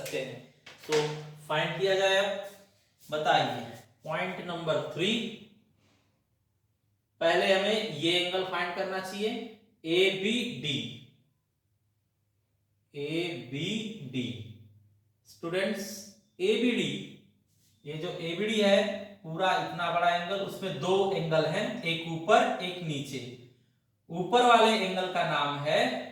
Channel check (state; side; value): identical; both; correlation 1.00